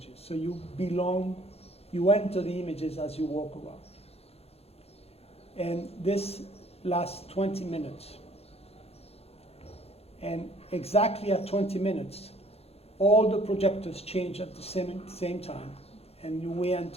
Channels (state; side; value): late; right; 0.29 ms